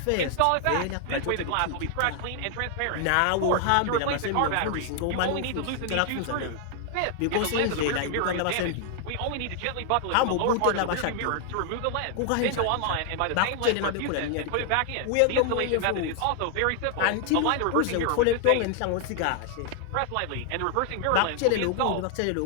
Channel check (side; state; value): both; different; correlation 0.00